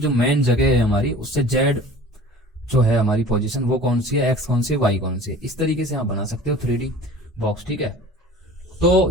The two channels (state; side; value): normal; both; correlation 0.43